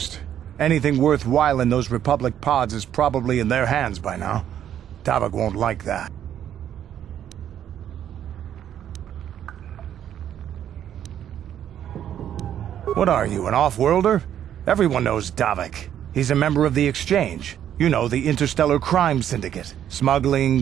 Anything worthwhile in those Republic pods is probably in their hands by now. Davik won't like that. What are you, an off-worlder? Everyone knows Davik. He's a member of the Exchange. You know, the interstellar crime syndicate. Smuggling,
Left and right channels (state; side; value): quieter; left; 10.3 dB